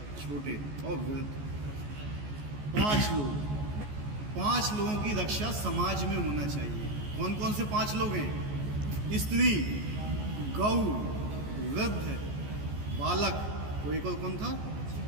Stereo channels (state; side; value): late; left; 14 ms